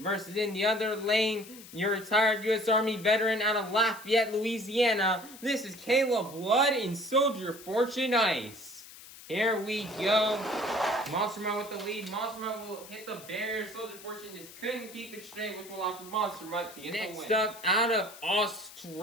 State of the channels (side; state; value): left; noise; hiss, 17 dB below the sound